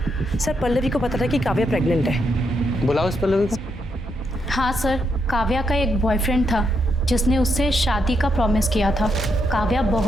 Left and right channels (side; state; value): both; normal; correlation 0.79